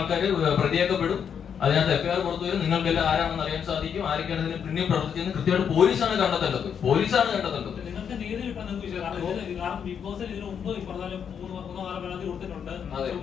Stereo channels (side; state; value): right; quieter; 7.6 dB